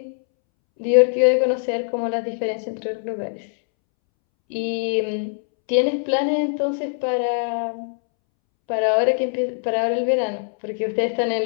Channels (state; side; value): silent; right; 64 dB below the other